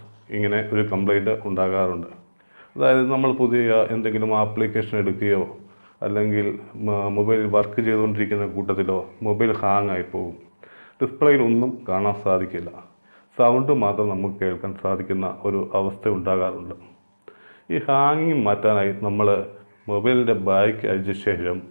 ഇങ്ങനെ ഒരു കംപ്ലൈൻറ്റ് ഉണ്ടാകാറുണ്ട്. അതായത് നമ്മൾ പുതിയ എന്തെങ്കിലും ആപ്ലിക്കേഷൻ എടുക്കുകയോ അല്ലെങ്കിൽ മൊബൈൽ വർക്ക് ചെയ്തുകൊണ്ടിരിക്കുന്ന കൂട്ടത്തിലോ മൊബൈൽ ഹാങ് ആയി പോകും. ഡിസ്പ്ലേയിൽ ഒന്നും കാണാൻ സാധിക്കില്ല. സൗണ്ട് മാത്രം നമുക്ക് കേൾക്കാൻ സാധിക്കുന്ന ഒരു അവസ്ഥ ഉണ്ടാകാറുണ്ട്. ഈ ഹാങ്ങിങ് മാറ്റാനായി നമ്മൾ മൊബൈലിൻ്റെ ബാക്ക് അഴിച്ച ശേഷം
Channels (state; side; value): inverted; both; correlation -1.00